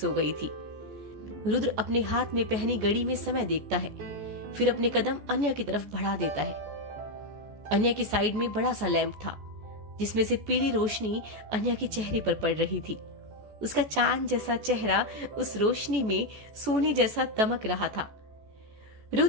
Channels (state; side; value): late; left; 14 ms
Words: गई थी। रुद्र अपने हाथ में पहनी घड़ी में समय देखता है, फिर अपने कदम अन्या की तरफ बढ़ा देता है। अन्या की साइड में बड़ा सा लैंप था, जिसमें से पीली रोशनी अन्या के चेहरे पर पड़ रही थी। उसका चांद जैसा चेहरा उस रोशनी में सोने जैसा दमक रहा था।